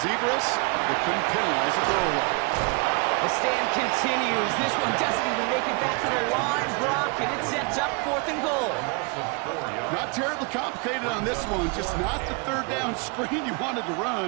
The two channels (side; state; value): left; quieter; 32.1 dB